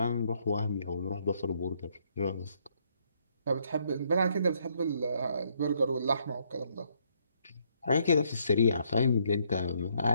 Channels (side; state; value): both; inverted; correlation -0.71